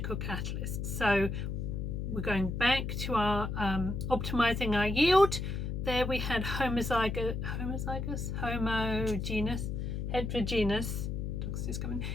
catalyst. So we're going back to our optimizing our yield. There we had heterogeneous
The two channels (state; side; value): noise; left; hum, 3 dB below the sound